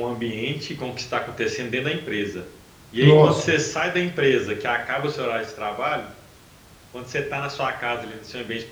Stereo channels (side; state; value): both; identical; correlation 1.00